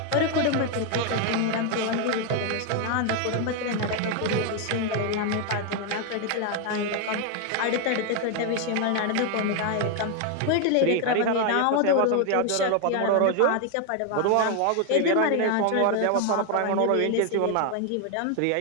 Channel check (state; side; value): different; both; correlation 0.01